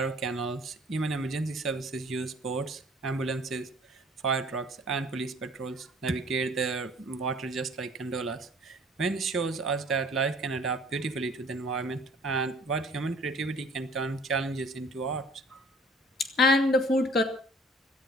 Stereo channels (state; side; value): normal; both; correlation 0.52